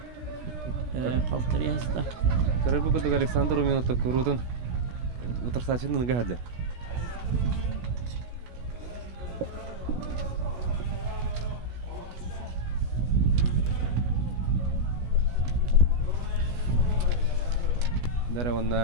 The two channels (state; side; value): late; left; 16 ms